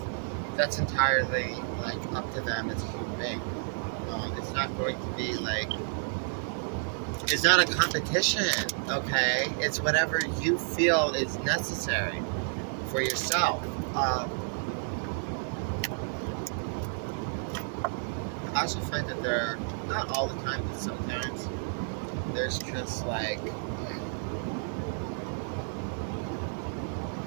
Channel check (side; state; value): left; silent; 57 dB below the other